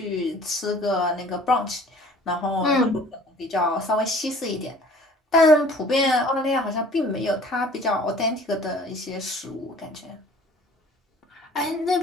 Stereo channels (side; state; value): both; normal; correlation 0.50